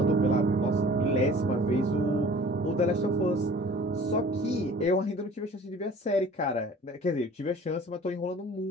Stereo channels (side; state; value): both; normal; correlation 0.47